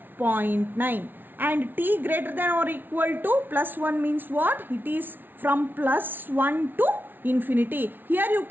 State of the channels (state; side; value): late; left; 0.095 ms